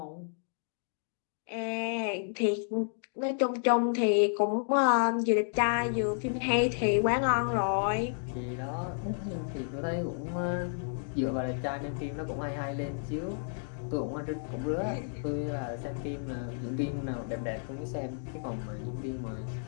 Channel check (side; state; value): right; silent; digital silence